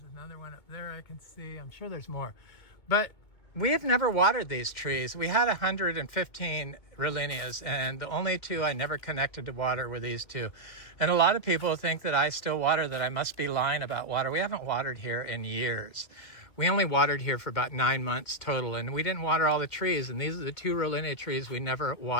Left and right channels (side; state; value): right; late; 2.1 ms